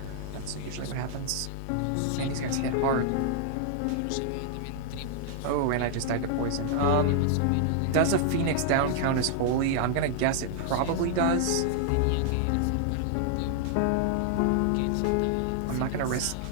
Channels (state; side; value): different; both; correlation -0.01